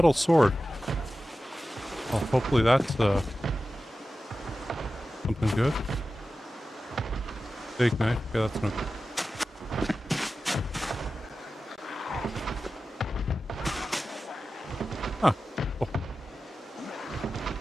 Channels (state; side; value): normal; both; correlation 0.94